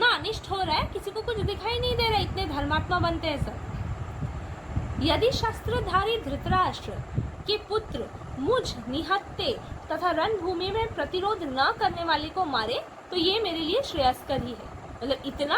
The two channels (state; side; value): identical; both; correlation 1.00